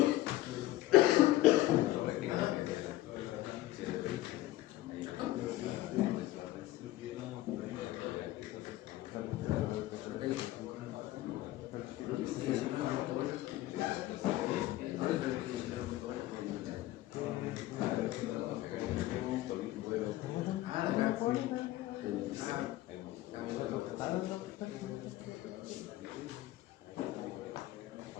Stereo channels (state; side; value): quieter; right; 16.2 dB